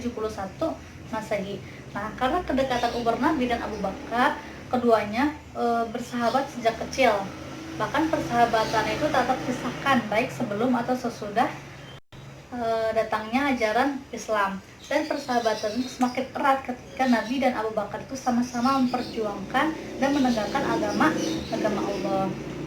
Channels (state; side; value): identical; both; correlation 1.00